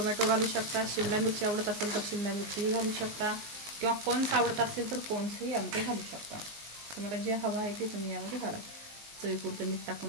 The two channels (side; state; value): left; late; 19 ms